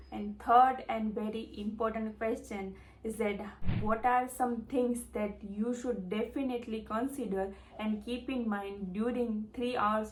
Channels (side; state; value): both; identical; correlation 1.00